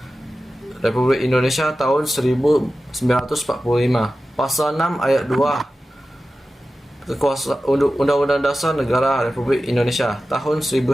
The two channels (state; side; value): normal; both; correlation 0.94